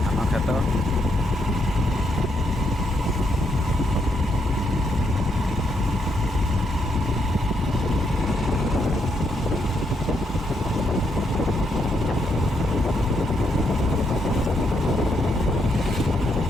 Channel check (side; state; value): both; normal; correlation 0.77